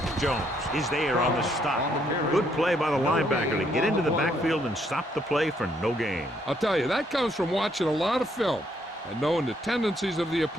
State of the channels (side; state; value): both; normal; correlation 0.71